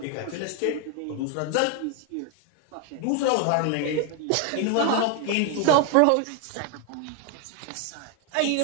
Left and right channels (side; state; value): both; different; correlation 0.01